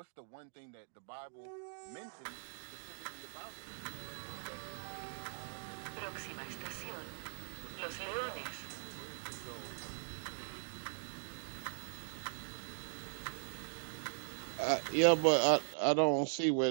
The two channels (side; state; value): left; silent; digital silence